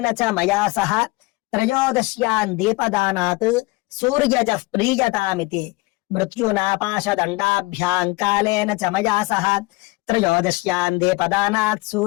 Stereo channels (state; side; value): quieter; right; 23.2 dB